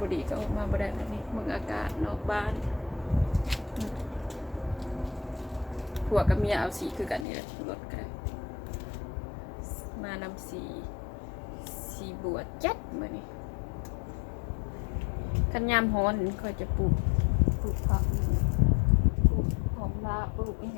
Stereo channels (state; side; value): drops out; right; at 7.2 s